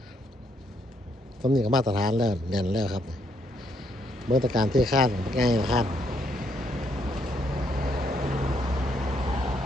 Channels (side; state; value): both; normal; correlation 0.73